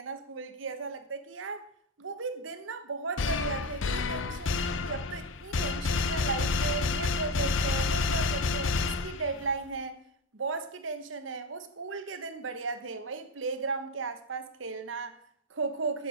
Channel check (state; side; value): normal; both; correlation 0.17